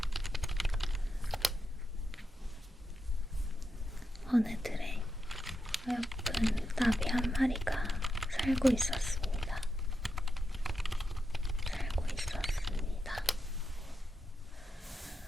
어느 들에 어여쁜 나비 한 마리가 살고 있었습니다. 살고 있었습니다.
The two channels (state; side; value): normal; both; correlation 0.87